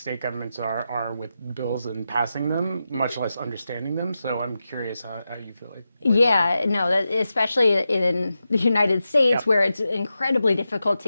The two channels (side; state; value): both; inverted; correlation -0.90